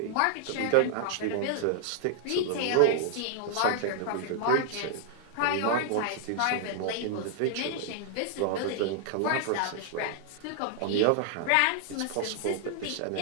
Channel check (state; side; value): different; both; correlation 0.00